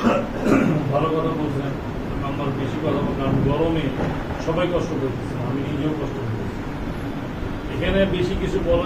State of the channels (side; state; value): both; identical; correlation 1.00